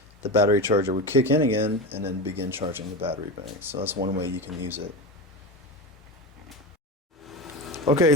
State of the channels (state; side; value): normal; both; correlation 0.22